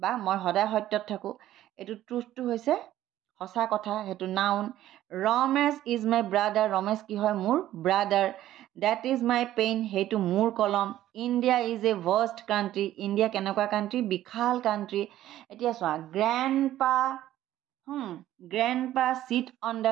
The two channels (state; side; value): quieter; left; 13.4 dB